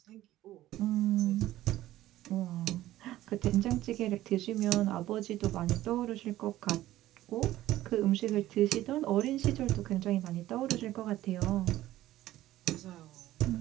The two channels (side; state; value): left; quieter; 14.8 dB